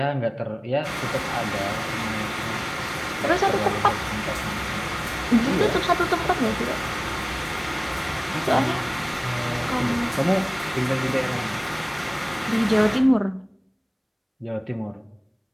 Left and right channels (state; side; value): identical; both; correlation 1.00